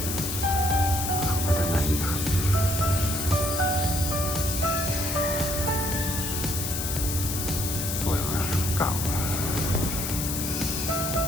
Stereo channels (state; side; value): noise; left; hiss, 3 dB below the sound